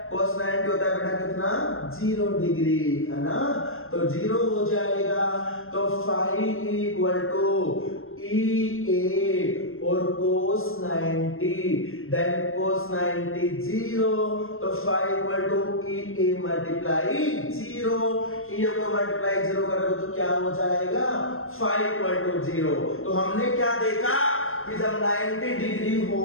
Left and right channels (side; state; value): right; late; 0.61 ms